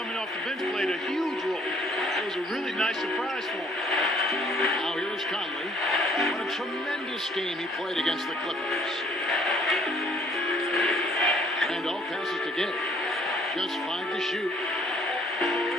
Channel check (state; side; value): normal; both; correlation 0.60